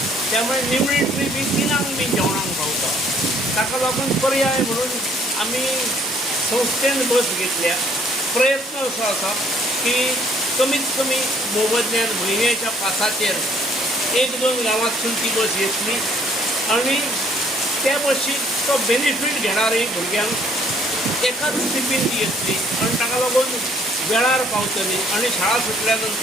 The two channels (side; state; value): both; normal; correlation 0.62